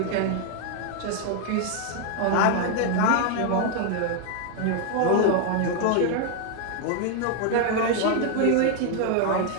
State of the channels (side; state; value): both; different; correlation 0.00